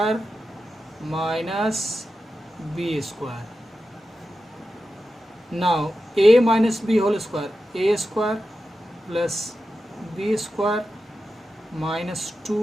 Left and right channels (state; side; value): normal; both; correlation 0.91